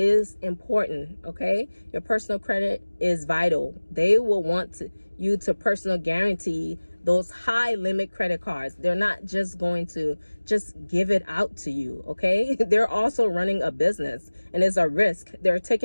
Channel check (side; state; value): both; inverted; correlation -1.00